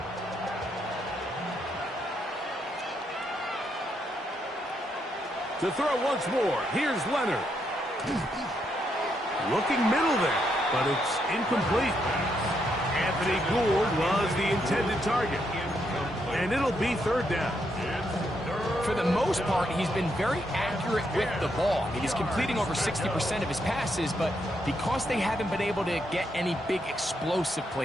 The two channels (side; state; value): both; normal; correlation 0.78